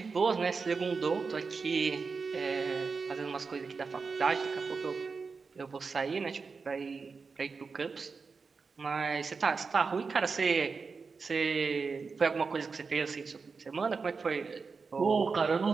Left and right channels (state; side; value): quieter; left; 4.8 dB